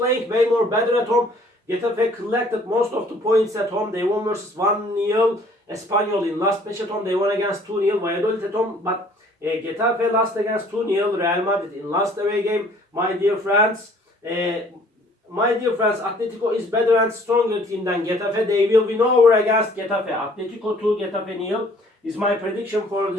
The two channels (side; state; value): both; normal; correlation 0.57